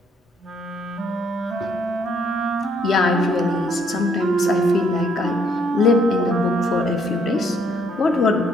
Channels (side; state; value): both; normal; correlation 0.68